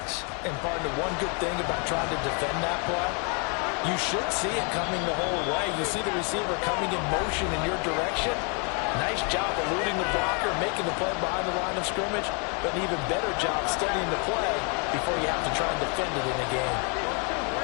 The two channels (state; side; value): quieter; right; 36.6 dB